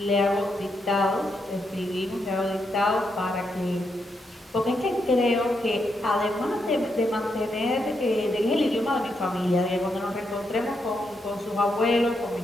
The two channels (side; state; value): both; normal; correlation 0.81